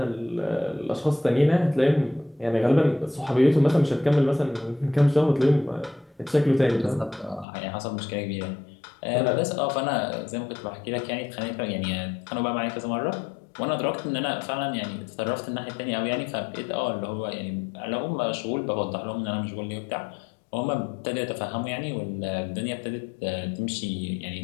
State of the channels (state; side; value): drops out; right; at 7.5 s